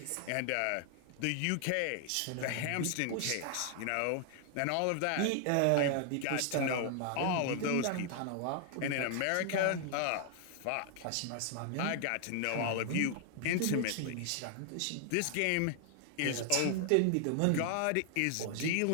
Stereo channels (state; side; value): different; both; correlation 0.00